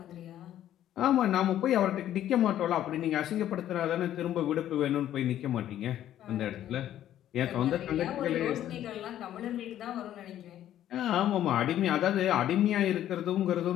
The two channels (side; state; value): right; quieter; 11.8 dB